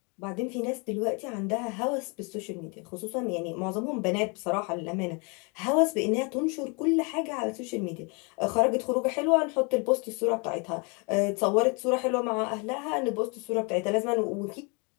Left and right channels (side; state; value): right; quieter; 32.4 dB